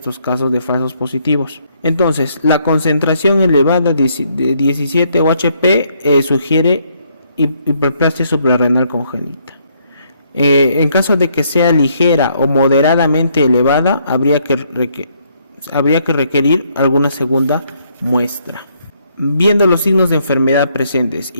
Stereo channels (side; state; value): both; inverted; correlation -0.71